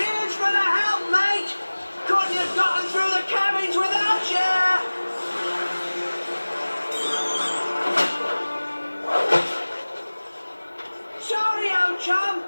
for the help, mate. Couldn't have gotten through the cabins without you. Sorry, old chum.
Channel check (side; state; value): both; inverted; correlation -1.00